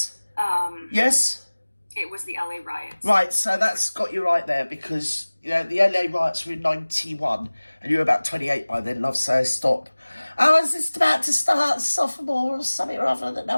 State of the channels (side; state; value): both; inverted; correlation -1.00